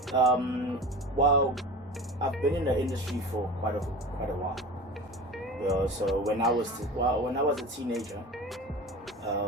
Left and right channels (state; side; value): normal; both; correlation 0.34